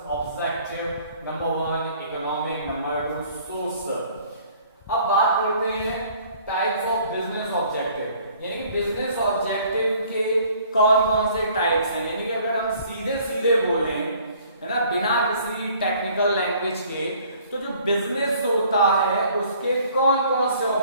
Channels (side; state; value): both; inverted; correlation -0.57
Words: objective. Number 1 economic, number 2 social. अब बात करते हैं टाइप्स ऑफ बिजनेस ऑब्जेक्टिव, यानी कि बिजनेस ऑब्जेक्टिव के कौन कौन से टाइप्स हैं। यानी कि अगर हम सीधे सीधे बोलें, है ना, बिना किसी टेक्निकल लैंग्वेज के, तो जो बिजनेस होता है उसके कौन कौन से